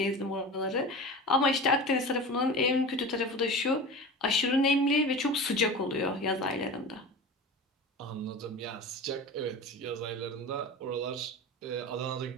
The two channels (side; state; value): both; normal; correlation 0.32